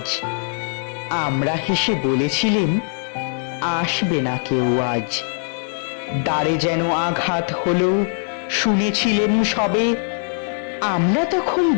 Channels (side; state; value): right; silent; 65 dB below the other